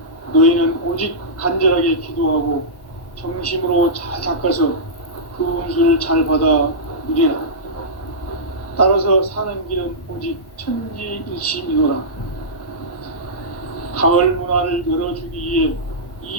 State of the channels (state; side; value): late; right; 1.1 ms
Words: 너희는 오직 간절하게 기도하고 정심으로 잘 닦아서 그 운수를 잘 받아 누리라. 따라서 사는 길은 오직 천지일심이노라. 가을 문화를 열어주기 위해